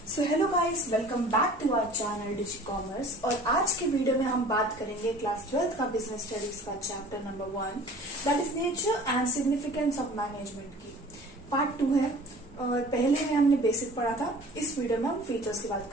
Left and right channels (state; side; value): normal; both; correlation 0.46